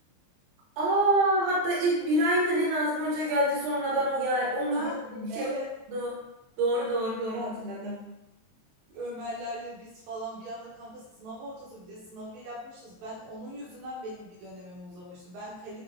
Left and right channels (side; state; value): left; late; 23 ms